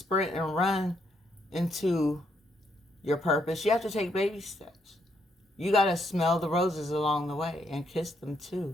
and run into your purpose. You have to take baby steps. You got to smell the roses along the way and kiss them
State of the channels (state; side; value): normal; both; correlation 0.75